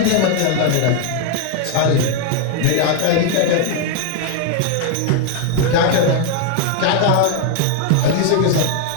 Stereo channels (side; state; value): both; different; correlation 0.00